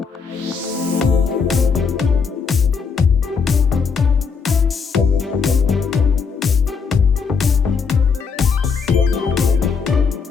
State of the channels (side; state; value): right; quieter; 5.6 dB